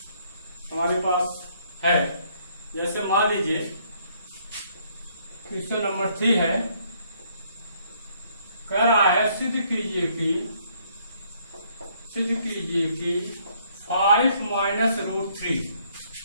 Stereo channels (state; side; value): inverted; both; correlation -0.66